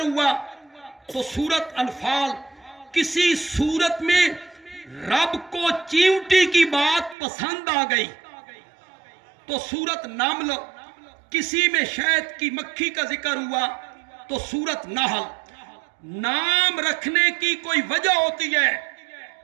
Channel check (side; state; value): left; drops out; at 7.2 s